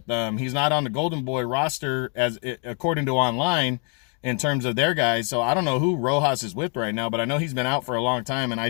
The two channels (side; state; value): right; quieter; 38.7 dB